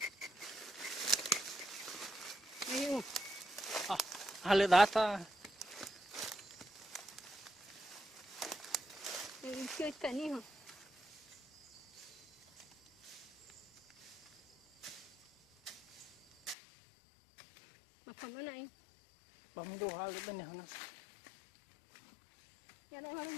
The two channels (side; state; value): right; drops out; at 16.6 s